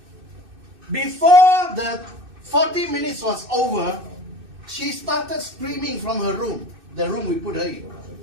Before the 40 minutes was over, she started screaming from her room, the room we put her in.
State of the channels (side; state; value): left; late; 2.6 ms